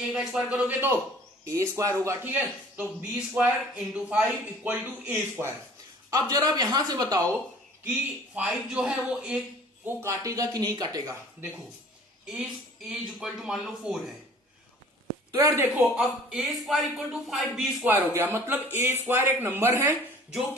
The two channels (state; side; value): normal; both; correlation 0.50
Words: का स्क्वायर करोगे तो A स्क्वायर होगा। ठीक है, तो B square into 5 equal to A square. अब जरा आप यहां से बताओ कि 5 जो है वो A को काटेगा कि नहीं काटेगा। देखो A इक्वल टू मान लो 4 है, तो यार देखो अब A square equal to 5B square हो गया। मतलब A स्क्वायर एक नंबर है जो